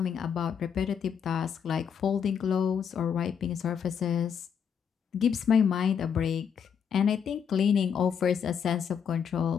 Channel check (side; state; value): right; quieter; 7.4 dB